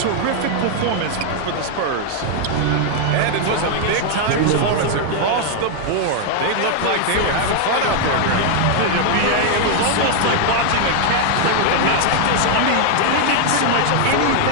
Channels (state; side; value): different; both; correlation 0.00